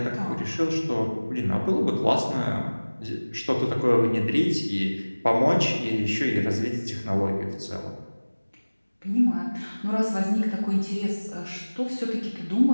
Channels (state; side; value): inverted; both; correlation -1.00